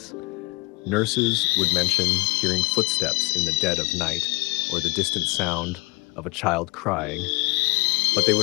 Nurses would mention hearing footsteps in the dead of night or the distant sound of a child crying, but they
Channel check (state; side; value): quieter; right; 24.6 dB